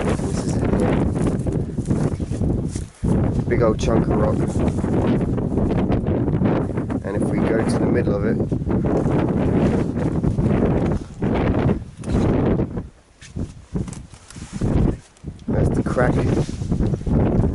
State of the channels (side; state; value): both; identical; correlation 1.00